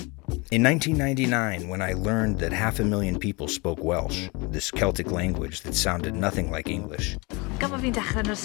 In 1999, when I learned that 500,000 people spoke Welsh, this Celtic language that sounded nothing like English, Gan bo fi'n dechrau yn yr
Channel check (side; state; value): right; quieter; 27.0 dB